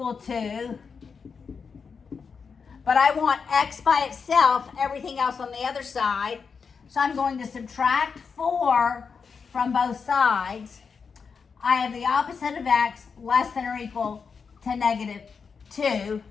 to. But I want x by itself, everything else on the other side. So I'm going to subtract 4 from both sides. I have the opposite of x less than or equal to -2.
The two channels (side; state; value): right; quieter; 5.7 dB